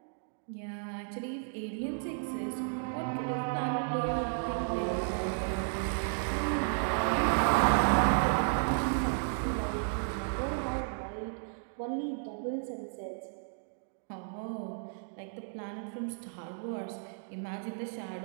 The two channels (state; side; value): silent; left; digital silence